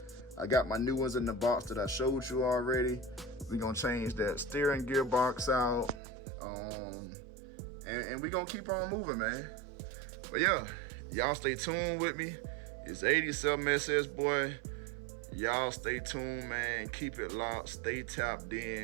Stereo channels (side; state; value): left; drops out; at 6.0 s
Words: I got my new ones in the box that I showed you already. We're gonna change that steering gearbox out, and we're gonna keep on moving, man. But yeah, y'all stay tuned with me. It's 87SS, boy. Y'all stay tuned, man. Keep it locked, stay tapped